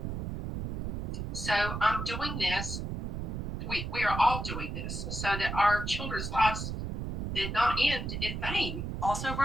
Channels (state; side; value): noise; right; rumble, 3 dB below the sound